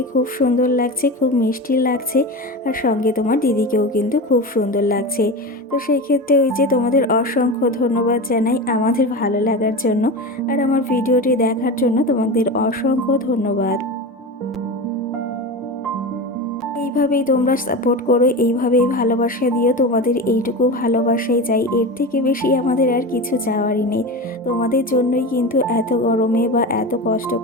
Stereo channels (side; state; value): both; normal; correlation 0.25